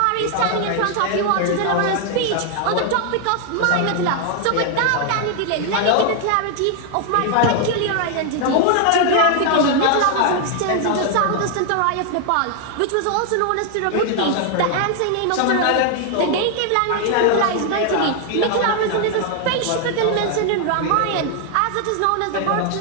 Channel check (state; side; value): different; both; correlation 0.00